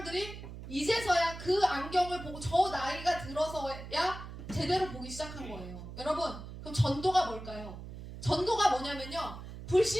이제서야 그 안경을 보고 저 나이가 들어서야 제대로 보기 시작한 거예요. 여러분 그럼 전도가 뭘까요? 전도가 뭐냐면요.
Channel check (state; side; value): noise; right; hum, 11 dB below the sound